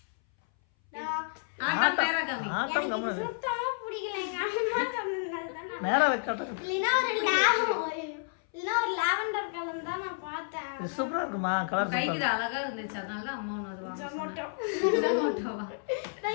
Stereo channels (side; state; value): right; silent; 57 dB below the other